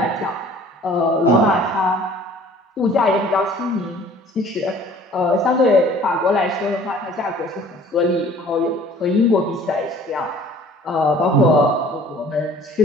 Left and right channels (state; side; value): normal; both; correlation 0.51